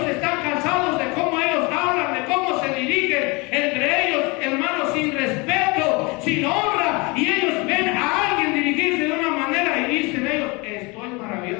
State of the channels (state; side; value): quieter; right; 27.2 dB